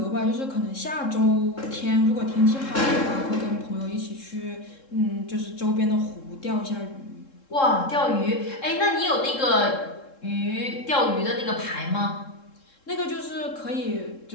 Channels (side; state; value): right; late; 3.7 ms